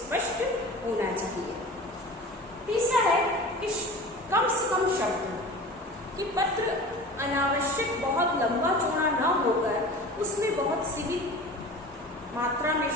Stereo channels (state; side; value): normal; both; correlation 0.37